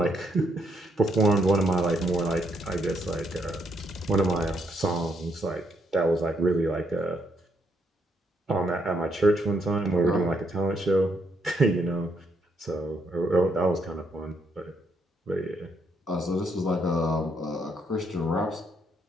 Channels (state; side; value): normal; both; correlation 0.75